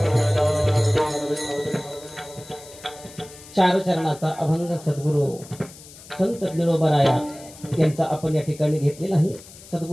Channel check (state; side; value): noise; left; hiss, 19 dB below the sound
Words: चार चरणाचा अभंग सद्गुरू संत ज्ञानोबाराया यांचा आपण या ठिकाणी घेतलेला आहे.